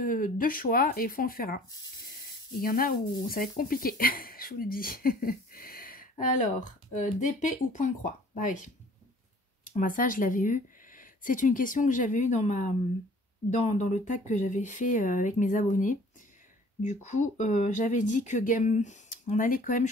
choix et il faut en faire un. Il y en a où ça va être compliqué, je vous le dis. Alors, d'épée ou point de croix? Bah oui. Ça, je l'avais eu. C'est une question que j'avais eue dans le tag que j'avais fait avec mes abonnés. Du coup, j'avais dit que on allait quand même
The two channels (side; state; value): both; normal; correlation 0.52